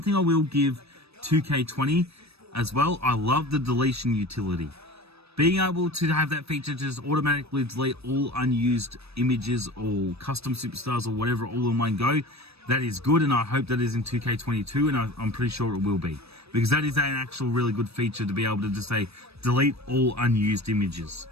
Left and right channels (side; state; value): left; late; 0.78 ms